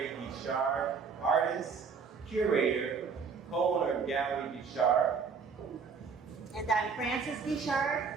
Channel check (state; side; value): quieter; left; 5.6 dB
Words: artist, curator, co-owner of Gallery Guichard. And I'm Frances